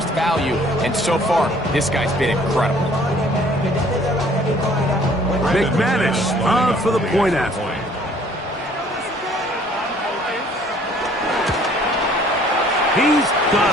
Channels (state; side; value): normal; both; correlation 0.57